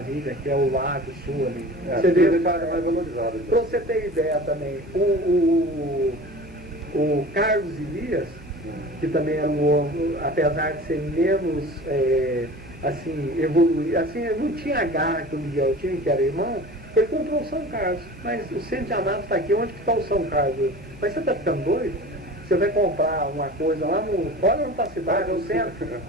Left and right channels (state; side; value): normal; both; correlation 0.39